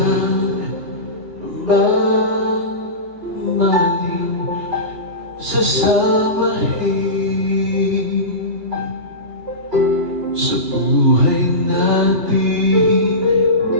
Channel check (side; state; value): left; late; 3.0 ms